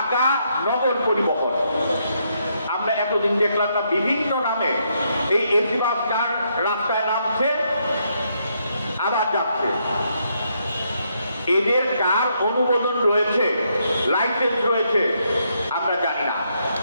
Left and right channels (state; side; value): inverted; both; correlation -0.76